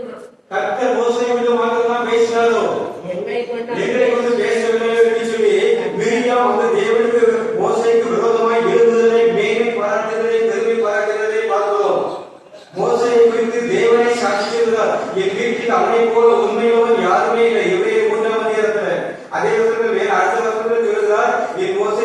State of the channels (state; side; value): identical; both; correlation 1.00